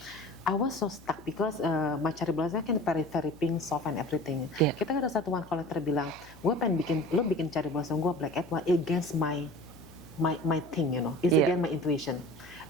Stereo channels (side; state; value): left; noise; hum, 23 dB below the sound